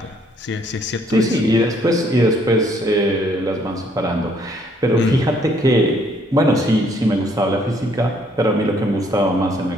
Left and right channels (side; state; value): both; normal; correlation 0.66